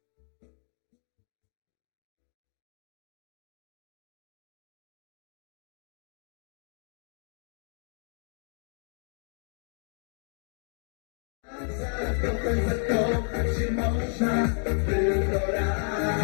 Zakochać się można tylko raz.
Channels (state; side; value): silent; right; 56 dB below the other